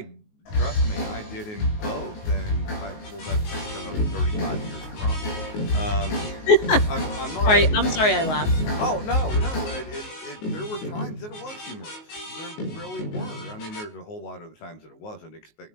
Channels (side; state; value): right; late; 19 ms